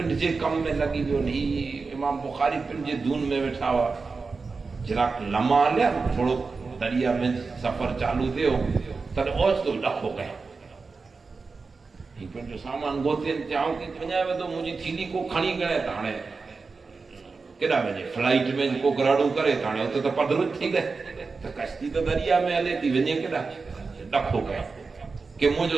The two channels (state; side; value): quieter; left; 4.4 dB